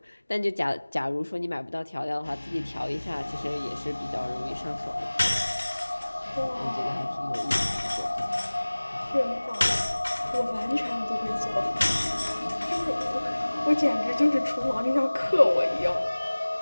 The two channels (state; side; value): inverted; both; correlation -1.00